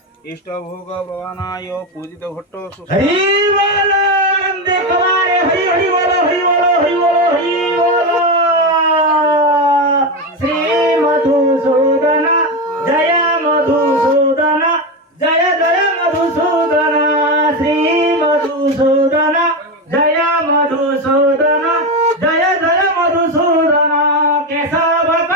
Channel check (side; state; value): both; normal; correlation 0.14